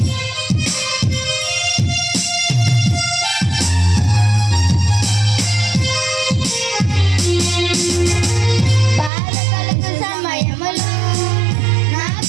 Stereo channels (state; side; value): drops out; left; at 9.1 s